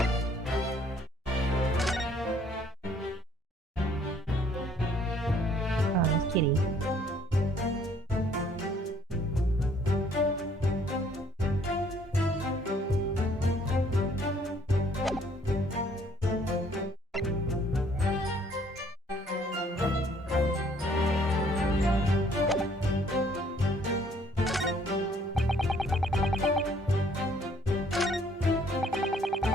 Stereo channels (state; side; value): normal; both; correlation 0.62